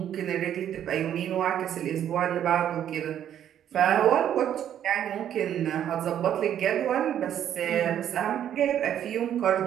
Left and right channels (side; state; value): left; quieter; 10.2 dB